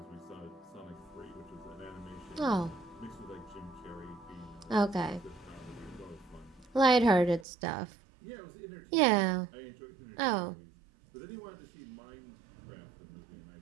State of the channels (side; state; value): left; drops out; at 7.5 s